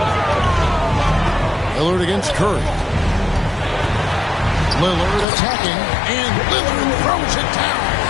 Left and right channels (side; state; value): right; drops out; at 5.2 s